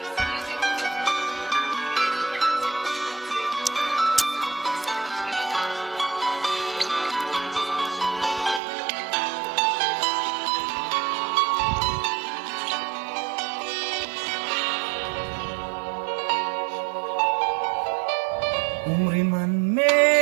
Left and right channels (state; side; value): drops out; left; at 8.6 s